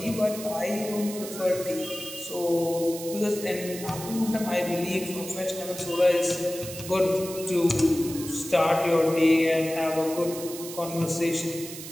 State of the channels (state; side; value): noise; right; hiss, 11 dB below the sound